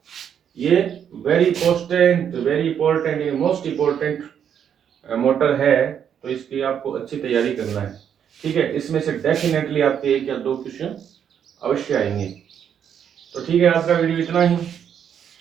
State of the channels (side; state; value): left; quieter; 8.5 dB